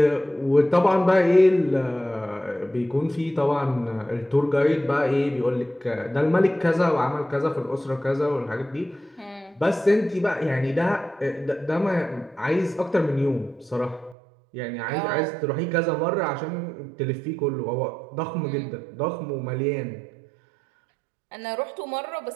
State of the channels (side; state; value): left; drops out; at 14.2 s